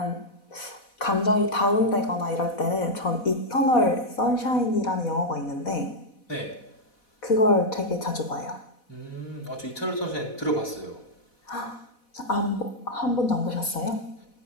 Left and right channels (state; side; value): late; right; 4.1 ms